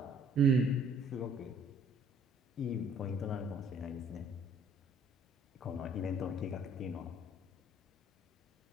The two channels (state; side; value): normal; both; correlation 0.58